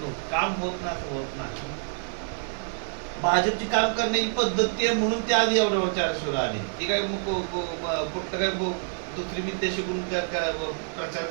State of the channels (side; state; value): left; silent; 58 dB below the other